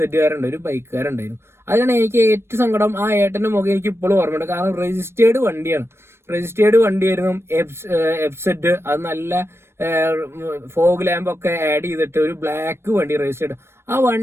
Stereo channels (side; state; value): left; late; 0.12 ms